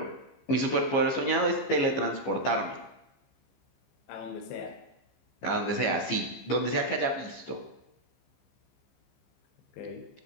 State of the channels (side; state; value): right; late; 15 ms